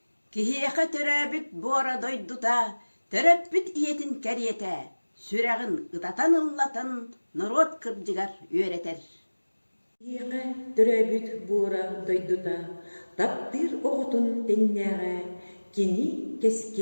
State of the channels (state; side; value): inverted; both; correlation -1.00